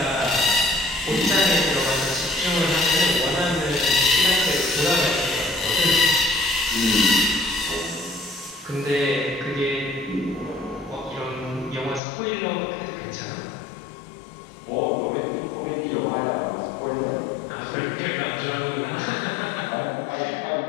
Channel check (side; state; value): right; drops out; at 12.0 s